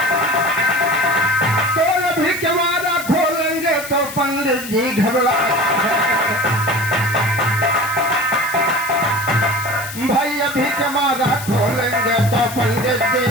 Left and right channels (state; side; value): noise; left; hiss, 11 dB below the sound